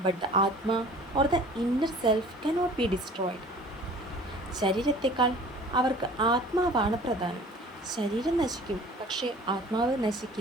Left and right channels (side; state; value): both; normal; correlation 0.46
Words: but the Atma or the inner self cannot be destroyed. ശരീരത്തെക്കാൾ അവർക്ക് ആത്മാവാണ് പ്രധാനം. ശരീരം നശിക്കും, പക്ഷേ ആത്മാവ്